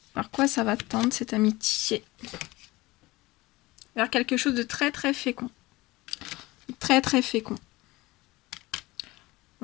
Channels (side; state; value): right; quieter; 20.4 dB